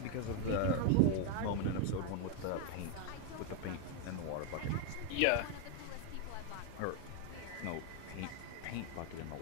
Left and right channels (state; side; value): different; both; correlation 0.01